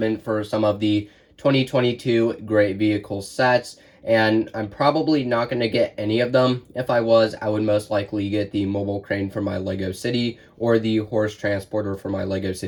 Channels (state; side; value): identical; both; correlation 1.00